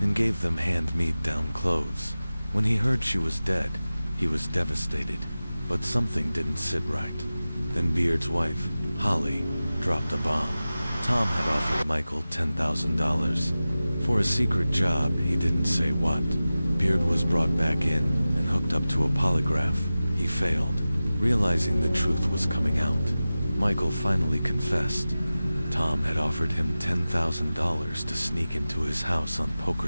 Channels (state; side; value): inverted; both; correlation -0.96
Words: gave them hand-me-down clothes. When he heard she was dead, he was devastated, but something didn't sit right. Then Beard's wife, Holly, dropped a bomb. Tom had offered Michael $10,000 for a secret job, he didn't say what. Beard was brought back in and hooked up to a polygraph. He failed, realizing the truth was coming out. Michael finally confessed. Tom had offered him $10,000 to sneak into his house on